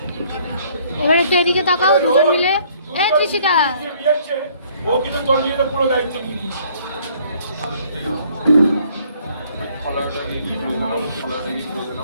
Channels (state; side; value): inverted; both; correlation -0.61